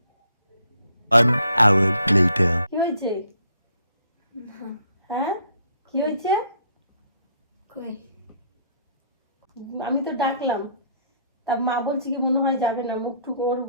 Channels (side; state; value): both; inverted; correlation -0.65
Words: 1 hour later. কি হয়েছে? হ্যাঁ, কি হয়েছে? কই আমি তো ডাকলাম, তার মা বলছে কি মনে হয় যাবে না, মুখটুক ওর